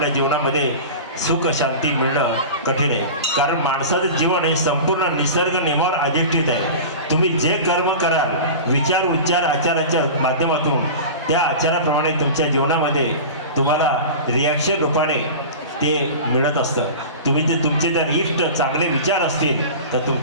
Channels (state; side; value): inverted; both; correlation -0.32